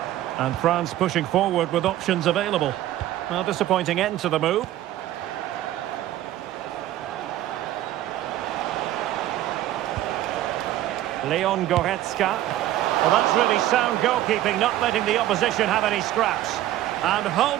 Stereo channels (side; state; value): left; quieter; 13.7 dB